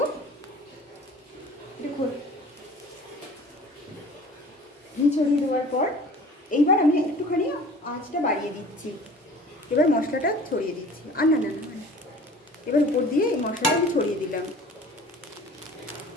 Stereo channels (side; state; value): both; normal; correlation 0.45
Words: দেখো ঘি ছড়িয়ে দেওয়ার পর এইবার আমি একটুখানি আঁচটা বাড়িয়ে দিচ্ছি। এবার মশলাটা ছড়িয়ে দিচ্ছি, আর না না না, এবার উপর দিয়ে এই মশলাটা আমি ছড়িয়ে দিলাম।